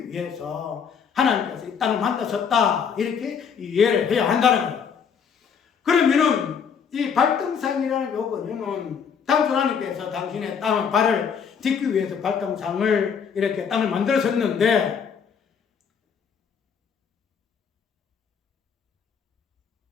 위해서 하나님께서 이 땅을 만드셨다. 이렇게 이해를 해야 한다는 거예요. 그러면은 이 발등상이라는 요거는 당초 하나님께서 당신의 발을 딛기 위해서 발등상을 이렇게 땅을 만들었었는데,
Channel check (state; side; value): quieter; right; 6.9 dB